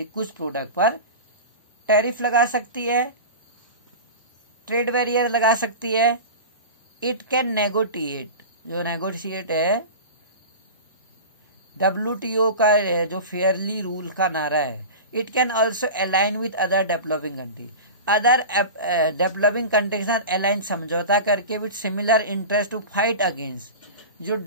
है, कुछ प्रोडक्ट पर टैरिफ लगा सकती है, ट्रेड बैरियर लगा सकती है। इट कैन नेगोटिएट, जो नेगोशिएट है WTO का जो फेयरली रूल का नारा है। It can also align with other developing country, other developing country के साथ अलाइन, समझौता करके with similar interest to fight against जो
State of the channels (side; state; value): both; inverted; correlation -0.30